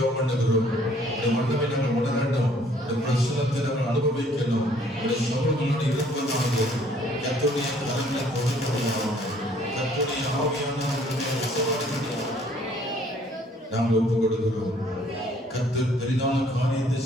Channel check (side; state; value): both; normal; correlation 0.60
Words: பண்ணுகிறோம். இந்த மன்னவை நாங்கள் உணர வேண்டும். இந்த பிரசனத்தை நாங்கள் அனுபவிக்கணும். இந்த சமூகங்களோடு இருப்பதாக கர்த்தருடைய கரங்களை கொடுக்கிறோம். கர்த்தருடைய ஆவியானவருடைய நாங்கள் ஒப்புக் கொடுக்கிறோம். கர்த்தர் பெரிதான காரியத்தை